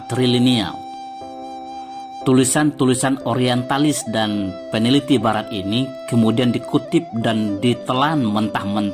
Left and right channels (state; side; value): identical; both; correlation 1.00